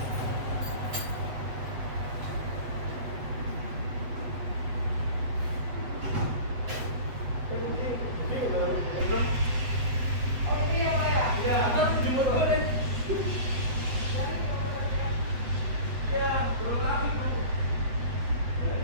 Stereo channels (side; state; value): left; late; 8.0 ms